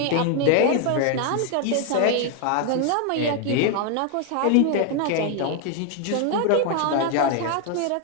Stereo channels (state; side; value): different; both; correlation 0.01